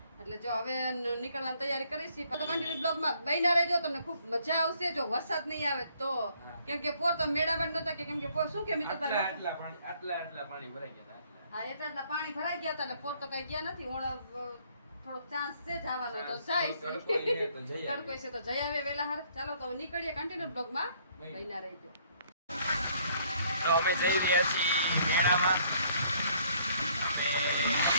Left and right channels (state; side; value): inverted; both; correlation -0.64